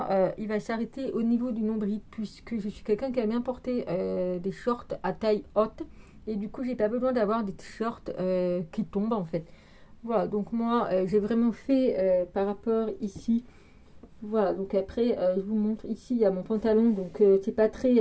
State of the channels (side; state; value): both; identical; correlation 1.00